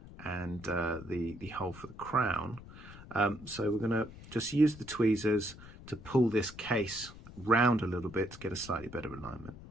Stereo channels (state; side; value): noise; left; rumble, 16 dB below the sound